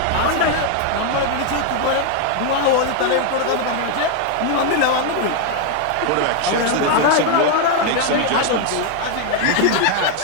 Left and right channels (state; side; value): different; both; correlation 0.00